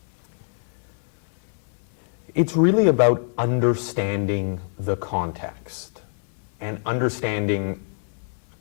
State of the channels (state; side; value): silent; right; 62 dB below the other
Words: It's really about understanding the context and understanding